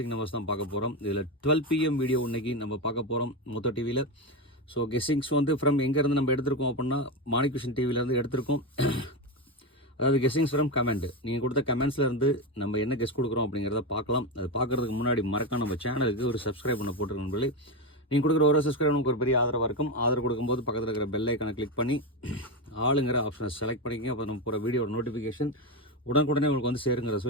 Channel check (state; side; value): normal; both; correlation 0.13